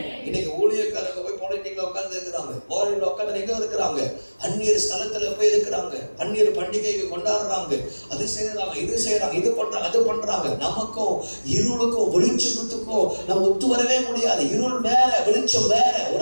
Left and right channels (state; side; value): inverted; both; correlation -1.00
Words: இன்னைக்கு ஊழியக்காரங்க போய் பொலிட்டிக்ல உட்கார்ந்து இருக்கிறாங்க, போரில் உட்கார்ந்து எங்க இருக்கிறாங்க, அந்நியர் ஸ்தலத்துல போய் இருக்கிறாங்க, அந்நியர் பண்டிகைக்கு கொண்டாடுறாங்க, அது செய்யறாங்க, இது செய்யறாங்க, இது பண்றாங்க, அது பண்றாங்க. நமக்கும் இருளுக்கும் வெளிச்சத்துக்கும் நம்ம ஒத்து வரவே முடியாது. இருள் வேற, வெளிச்சம் வேற.